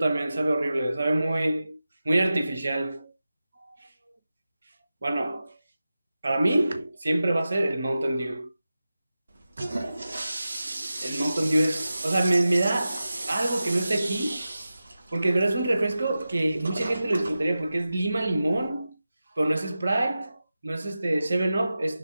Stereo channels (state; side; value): inverted; both; correlation -0.93